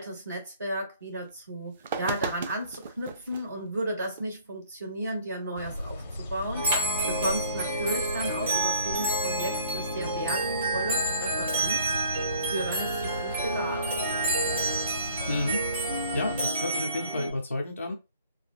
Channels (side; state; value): both; inverted; correlation -0.54